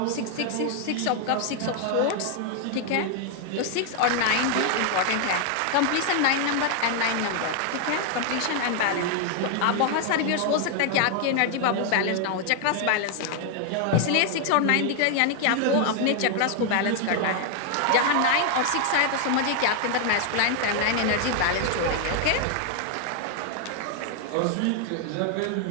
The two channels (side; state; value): both; different; correlation 0.00